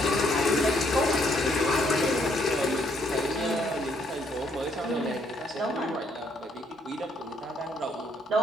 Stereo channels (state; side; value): normal; both; correlation 0.70